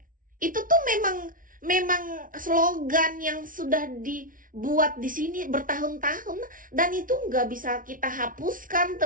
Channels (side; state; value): left; late; 0.39 ms